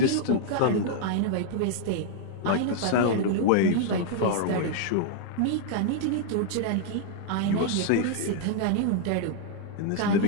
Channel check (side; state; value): both; different; correlation 0.00